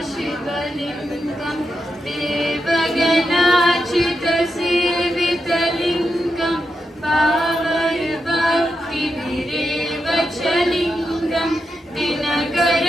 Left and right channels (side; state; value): both; normal; correlation 0.86